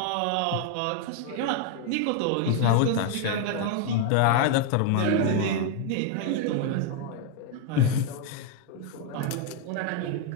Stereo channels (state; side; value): different; both; correlation 0.01